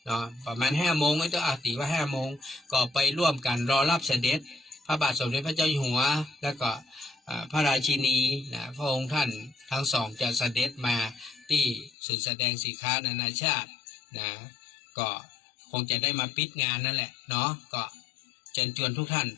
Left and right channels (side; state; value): right; drops out; at 11.9 s